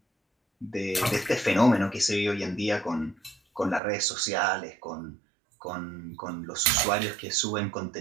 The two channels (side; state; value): left; drops out; at 3.8 s